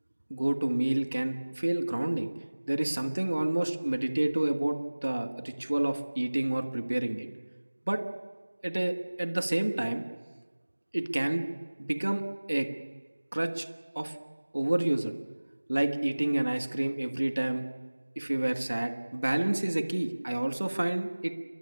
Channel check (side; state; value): both; inverted; correlation -1.00